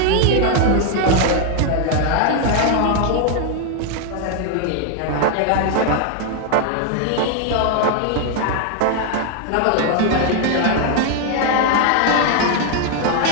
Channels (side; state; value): both; different; correlation 0.00